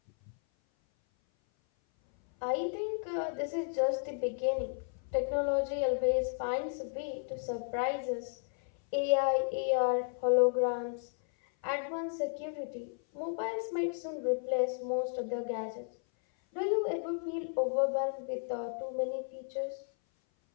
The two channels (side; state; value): right; silent; 55 dB below the other